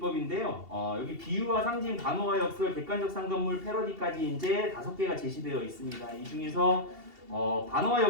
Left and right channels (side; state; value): left; late; 2.7 ms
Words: 여기 비유와 상징, 관어와 역설, 객관적 상관물, 패러디까지 이제 5개가 제시되어 있습니다. 이 중에서 반어와